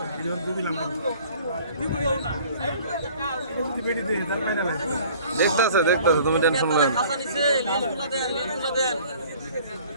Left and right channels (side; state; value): both; inverted; correlation -0.51